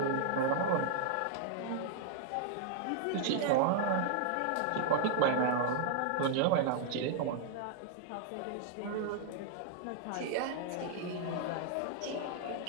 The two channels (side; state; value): both; different; correlation 0.00